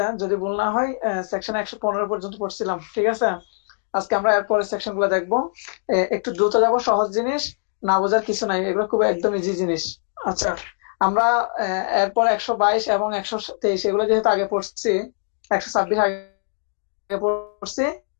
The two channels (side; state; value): right; silent; digital silence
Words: যদি ভুল না হয়, সেকশন 115 পর্যন্ত পড়ছিলাম, ঠিক আছে? আজকে আমরা এরপরের সেকশন গুলো দেখবো। একটু দ্রুত যাব, সহজ জিনিস, না বোঝার কিছু নাই, এগুলো খুব একদম ইজি জিনিস। আচ্ছা, আমরা এরপর 122 এবং 123 এগুলো যেহেতু আগে পড়ছি, 126 আগে পড়ছি,